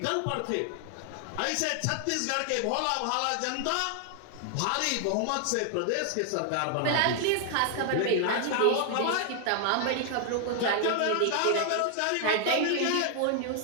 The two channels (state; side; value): different; both; correlation 0.00